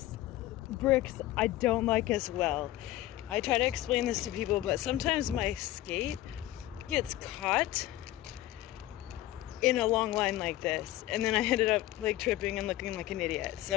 bricks I don't like as well. I try to explain this to people, but sometimes my skate gets caught in a long line like this, and then I ended up like tripping and looking like an idiot.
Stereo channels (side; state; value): right; quieter; 15.4 dB